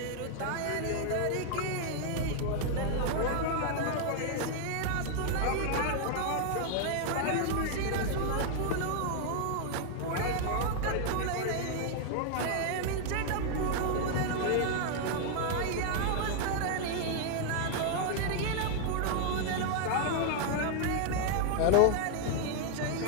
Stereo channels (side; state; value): both; different; correlation 0.00